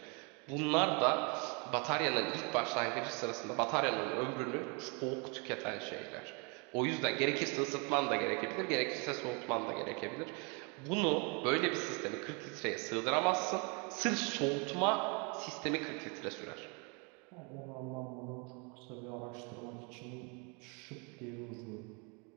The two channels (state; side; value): quieter; left; 32.9 dB